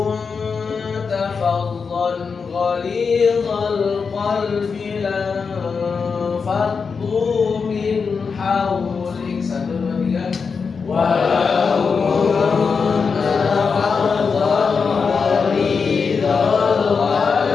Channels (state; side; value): quieter; right; 5.4 dB